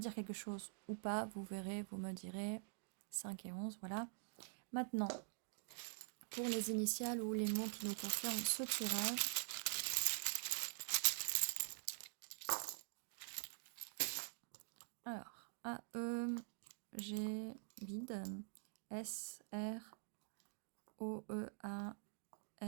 quelque chose ou pas. Vous verrez, vous me direz. 5 et 11, voilà. Maintenant, pour les initiales ou les mots qui nous concernent, ce tirage. Alors, A, E, G, vide. S, R, O, E, A,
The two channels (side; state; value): left; silent; digital silence